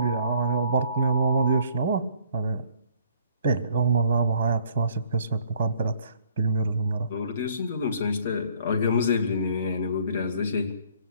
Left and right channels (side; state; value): both; inverted; correlation -0.60